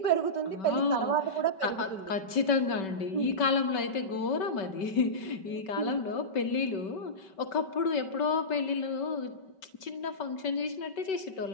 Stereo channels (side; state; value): right; late; 5.3 ms